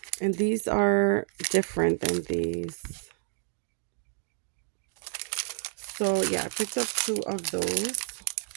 And these are different than these. So yeah, I picked up two of those.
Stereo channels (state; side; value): silent; left; digital silence